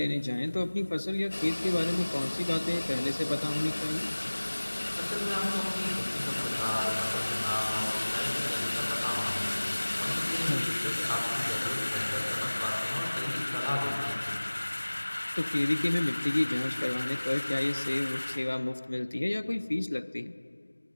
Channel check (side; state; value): both; inverted; correlation -1.00